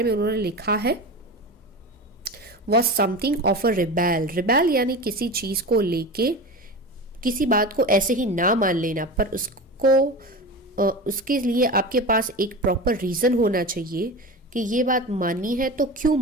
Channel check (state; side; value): normal; both; correlation 0.28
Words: में उन्होंने लिखा है was something of a rebel. Rebel यानी किसी चीज़ को लेके किसी बात को ऐसे ही ना मान लेना, पर उसके लिए आपके पास एक प्रॉपर रीज़न होना चाहिए कि ये बात माननी है तो क्यों